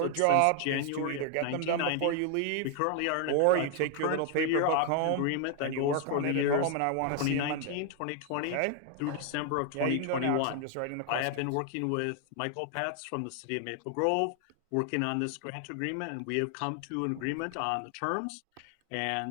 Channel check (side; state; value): both; different; correlation 0.00